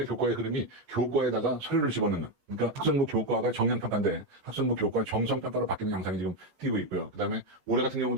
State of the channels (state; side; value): late; left; 14 ms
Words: 교과의 흐름이 교과에다가 서류를 집어넣는 그러니까 학생부 교과가 정량평가인데 학생부 교과 정성평가로 바뀌는 양상이 지금 띄고 있고요. 그 다음에 올해 같은